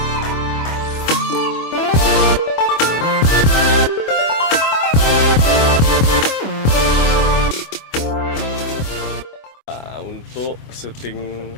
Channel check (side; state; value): right; late; 25 ms